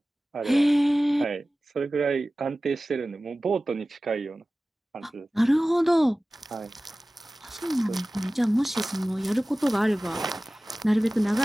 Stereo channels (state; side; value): normal; both; correlation 0.97